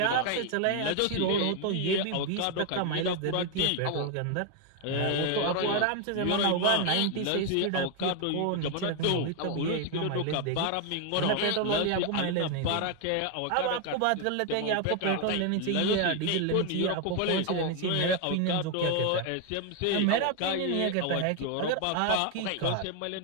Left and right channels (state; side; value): different; both; correlation 0.01